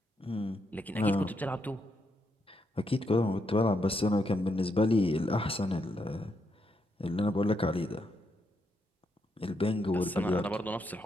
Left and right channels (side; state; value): both; normal; correlation 0.80